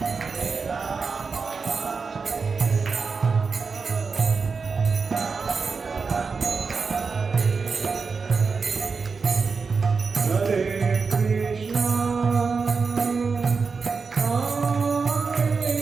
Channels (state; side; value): quieter; left; 4.9 dB